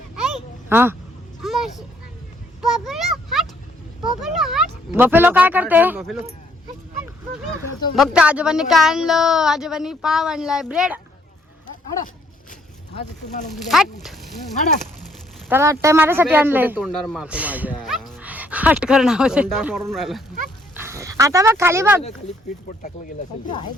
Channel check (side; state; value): both; normal; correlation 0.66